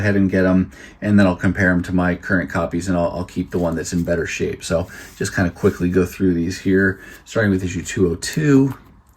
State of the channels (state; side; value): identical; both; correlation 1.00